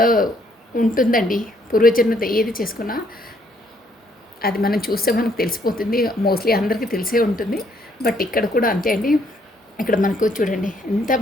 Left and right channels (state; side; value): normal; both; correlation 0.68